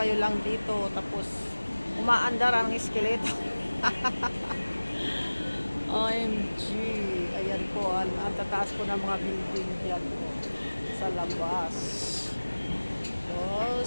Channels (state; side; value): inverted; both; correlation -1.00